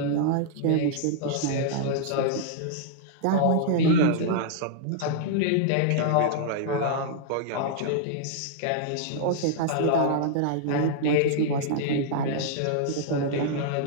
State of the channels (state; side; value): different; both; correlation -0.01